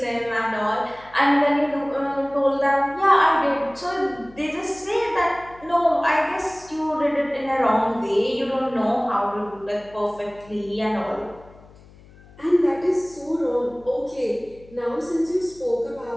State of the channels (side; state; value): left; noise; hum, 24 dB below the sound